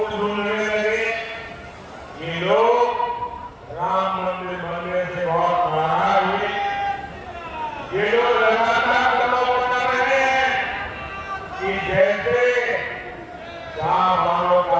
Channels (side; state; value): both; identical; correlation 1.00